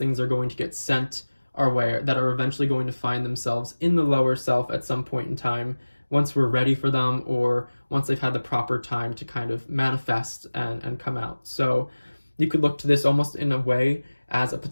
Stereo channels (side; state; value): both; inverted; correlation -1.00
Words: are going to get sent our way, that are eventually going to find themselves in the lower self at some point in time, once we're ready for them, or once they've had the proper time to kind of manifest and come out. So you could look to this almost in a way as a